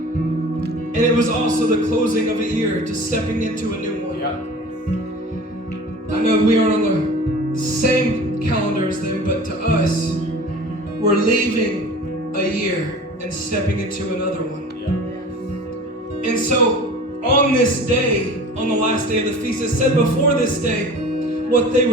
it was also the closing of a year, to stepping into a new one. Yeah. I know we aren't on the same calendar as them, but to us, we're leaving a year and stepping into another one. Yeah. And so on this day, on the last day of the feast, it said before this day, what they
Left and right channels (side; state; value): both; normal; correlation 0.40